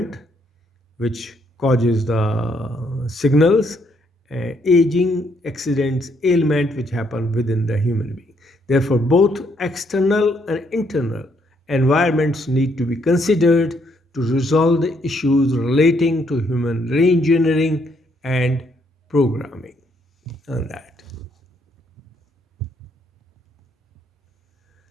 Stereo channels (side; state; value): both; normal; correlation 0.72